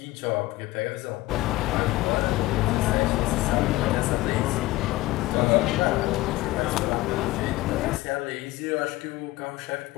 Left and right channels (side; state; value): right; quieter; 18.4 dB